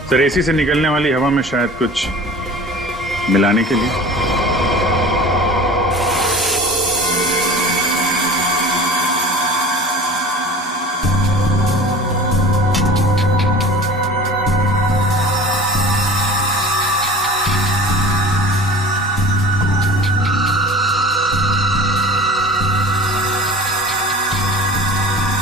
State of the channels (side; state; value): both; normal; correlation 0.40